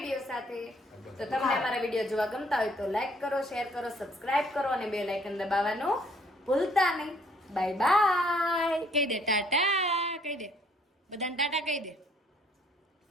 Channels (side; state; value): both; normal; correlation 0.63